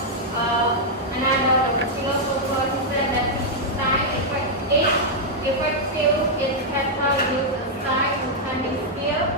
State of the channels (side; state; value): both; normal; correlation -0.05